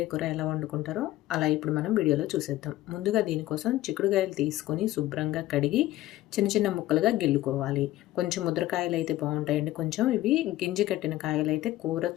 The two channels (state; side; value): quieter; right; 15.7 dB